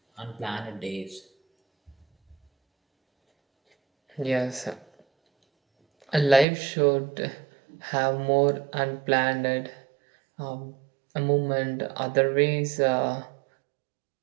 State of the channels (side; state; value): left; drops out; at 6.5 s